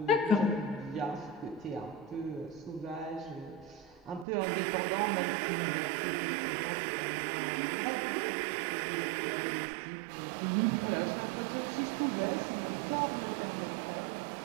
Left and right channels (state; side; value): drops out; left; at 4.2 s